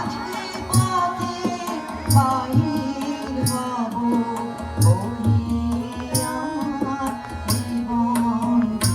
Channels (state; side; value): identical; both; correlation 1.00